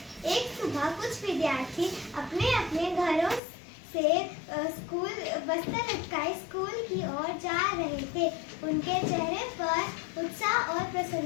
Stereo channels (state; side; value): drops out; right; at 3.4 s